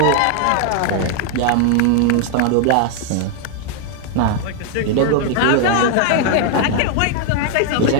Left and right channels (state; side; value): different; both; correlation 0.00